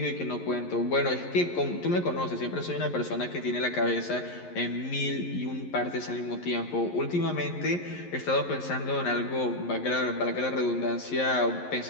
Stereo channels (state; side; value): late; right; 11 ms